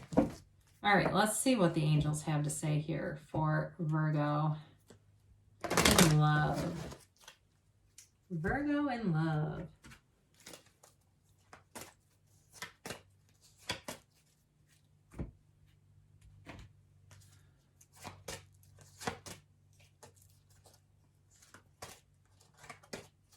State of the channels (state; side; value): identical; both; correlation 1.00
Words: All right, let's see what the angels have to say here for Virgo in love. Virgo in love.